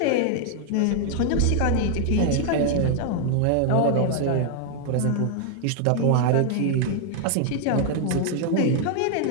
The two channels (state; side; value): different; both; correlation 0.00